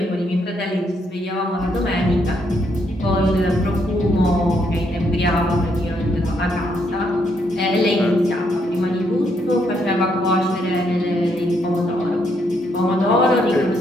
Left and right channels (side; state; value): both; normal; correlation 0.74